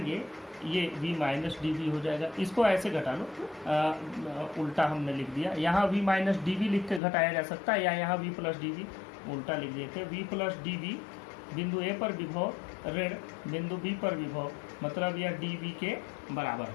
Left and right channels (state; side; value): drops out; right; at 7.0 s